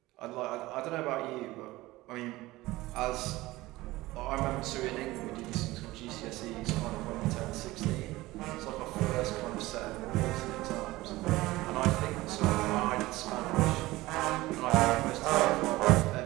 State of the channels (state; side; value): quieter; left; 18.8 dB